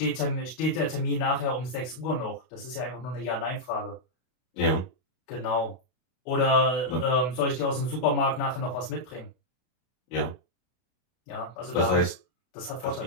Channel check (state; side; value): late; right; 32 ms